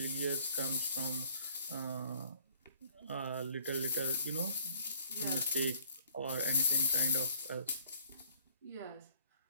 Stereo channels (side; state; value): both; inverted; correlation -0.58